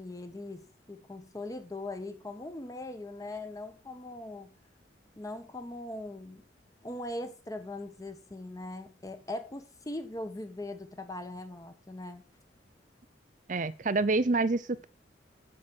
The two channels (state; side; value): normal; both; correlation 0.44